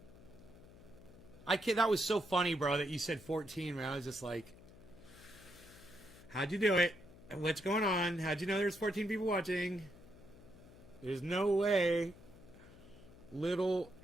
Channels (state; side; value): noise; left; hum, 20 dB below the sound